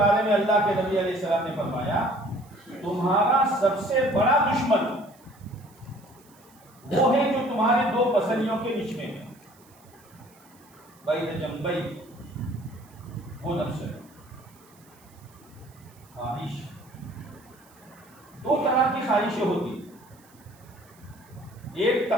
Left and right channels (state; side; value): noise; right; hiss, 28 dB below the sound